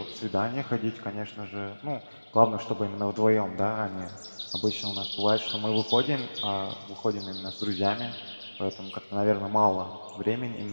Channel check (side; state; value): both; inverted; correlation -1.00